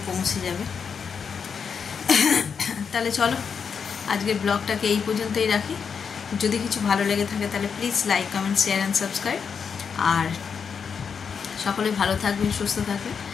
পৌঁছে যাবে। তাহলে চলো আজকের ব্লগটাকে এই পর্যন্তই রাখি। যদি কিছু ভালো লেগে থাকে তাহলে please like, comment, share and subscribe. আর সকলে ভালো থাকবেন, সুস্থ থাকবেন।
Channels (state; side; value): quieter; right; 6.4 dB